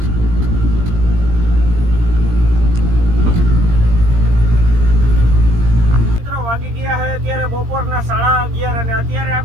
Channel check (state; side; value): late; left; 17 ms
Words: વાગી ગયા છે અત્યારે બપોરના 11:30 અને અત્યારે